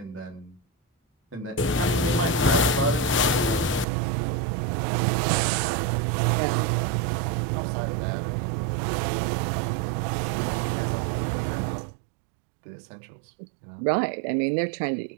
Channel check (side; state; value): left; drops out; at 3.9 s